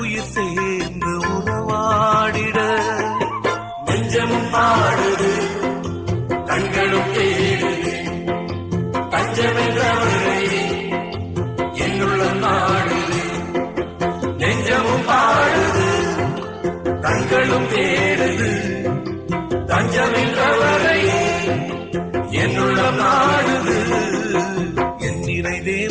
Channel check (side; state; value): both; identical; correlation 1.00